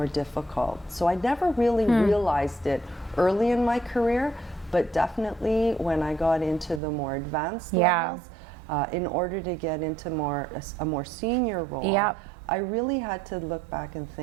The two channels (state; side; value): drops out; left; at 6.8 s